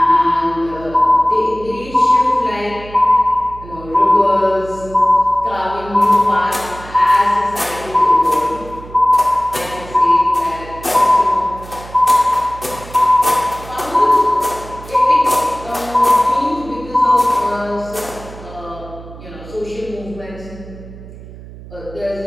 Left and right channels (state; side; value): noise; right; hum, 16 dB below the sound